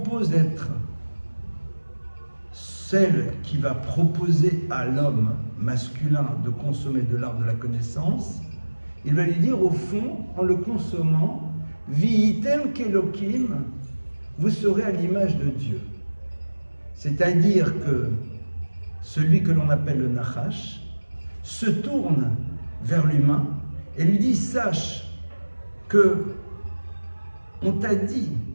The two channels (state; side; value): inverted; both; correlation -1.00